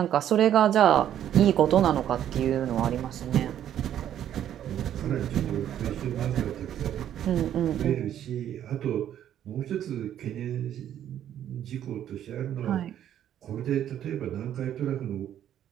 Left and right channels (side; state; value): left; quieter; 10.7 dB